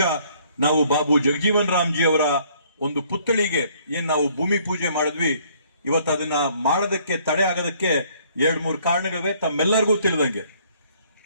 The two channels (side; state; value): both; inverted; correlation -0.62